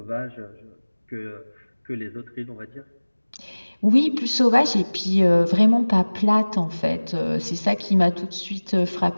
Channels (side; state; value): both; inverted; correlation -1.00